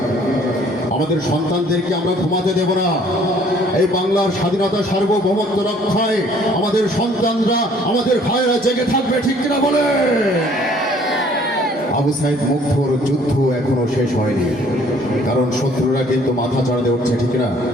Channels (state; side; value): normal; both; correlation 0.58